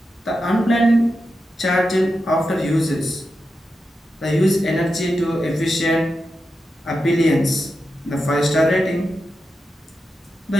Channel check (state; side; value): normal; both; correlation 0.89